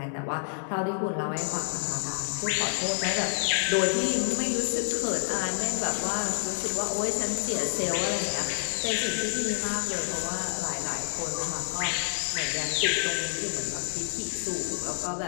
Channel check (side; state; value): right; silent; 59 dB below the other